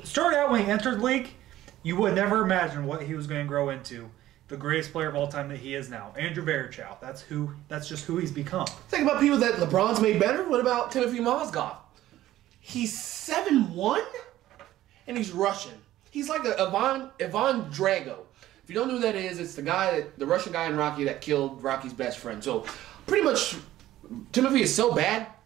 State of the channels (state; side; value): quieter; left; 14.3 dB